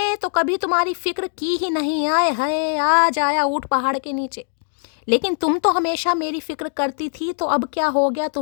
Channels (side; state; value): right; silent; digital silence